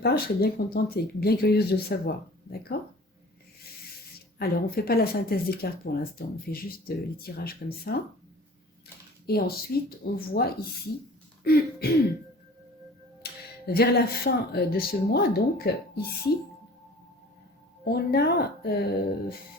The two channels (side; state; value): both; normal; correlation 0.45